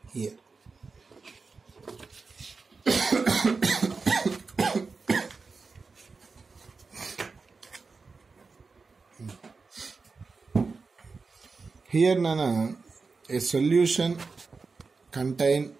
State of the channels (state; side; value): quieter; left; 4.4 dB